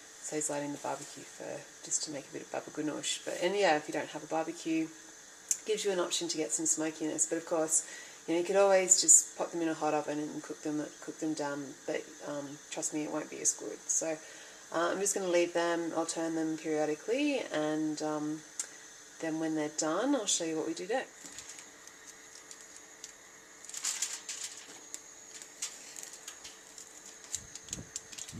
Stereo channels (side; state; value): both; identical; correlation 1.00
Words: saves lighting the barbecue for just to make a bit of babaganoush. And yeah, if you don't have a barbecue, it gives you an option to get some smokiness. But of course, you could always just pop them in a hot oven and cook them down. But trust me, it won't be as good. So I'm just going to leave them. I'll turn them periodically, and then when they're done, I'll show you what we do next.